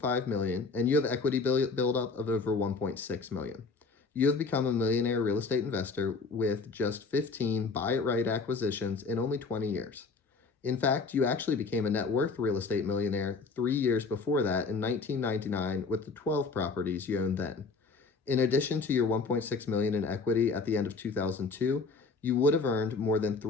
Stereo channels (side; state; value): right; quieter; 4.3 dB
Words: million, and you have equity buildup of over $1.6 million. You have become a millionaire real estate investor with just 15 buy-it-right acquisitions in only 20 years. In fact, you actually became a net worth real estate millionaire 3 years before that in 1999 with the 12 properties you owned then. In addition to your $1.6 million in equity at the end of 2002, you would have earned more than